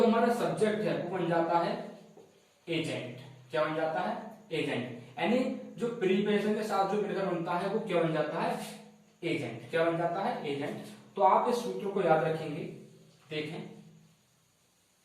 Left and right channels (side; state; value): both; identical; correlation 1.00